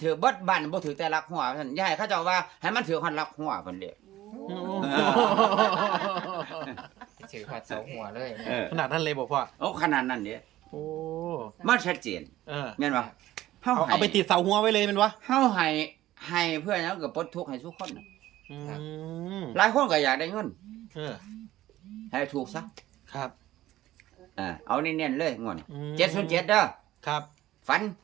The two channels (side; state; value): left; quieter; 14.9 dB